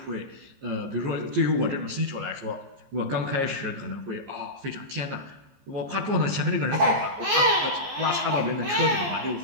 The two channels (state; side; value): late; left; 14 ms